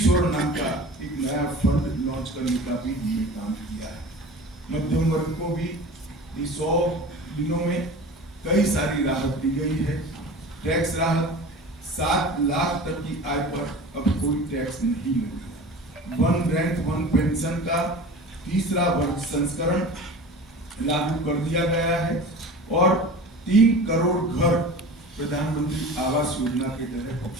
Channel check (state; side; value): normal; both; correlation 0.37